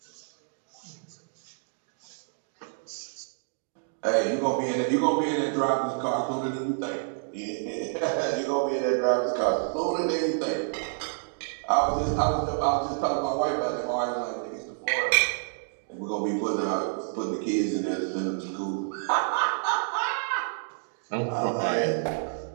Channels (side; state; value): left; silent; digital silence